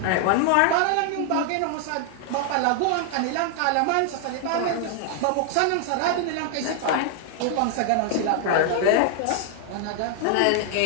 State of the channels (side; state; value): both; different; correlation 0.00